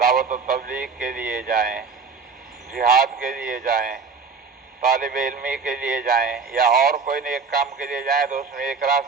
دعوت و تبلیغ کے لیے جائیں، جہاد کے لیے جائیں، طالب علمی کے لیے جائیں، یا اور کوئی نیک کام کے لیے جائیں تو اس میں ایک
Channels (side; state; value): left; quieter; 5.1 dB